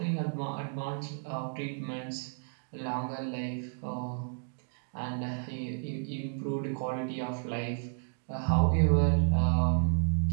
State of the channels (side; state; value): left; silent; digital silence